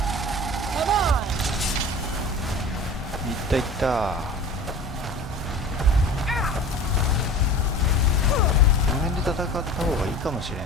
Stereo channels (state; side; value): normal; both; correlation 0.38